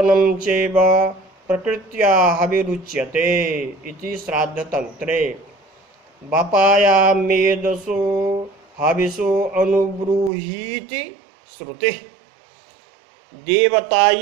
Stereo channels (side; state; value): left; drops out; at 10.3 s